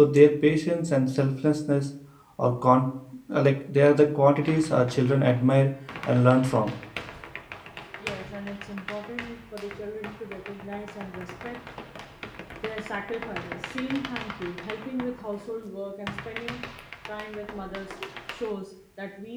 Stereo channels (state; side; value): identical; both; correlation 1.00